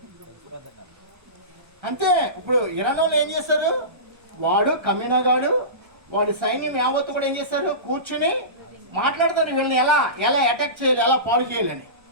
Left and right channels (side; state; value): left; late; 1.3 ms